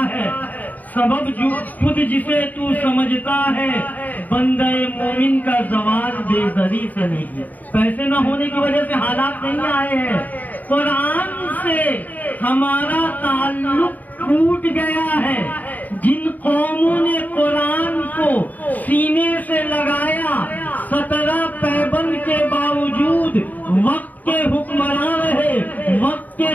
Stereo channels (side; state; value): right; late; 0.081 ms